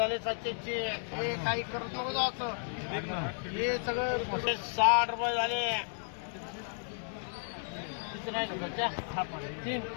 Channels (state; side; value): silent; right; 55 dB below the other